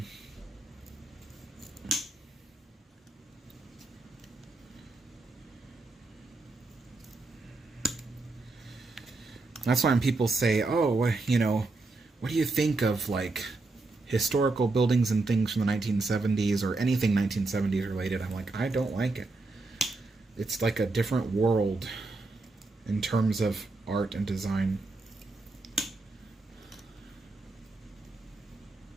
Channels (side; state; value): left; quieter; 3.3 dB